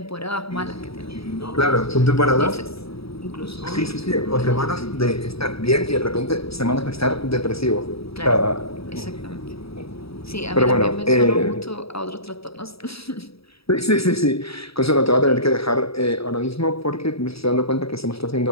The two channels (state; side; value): late; right; 0.77 ms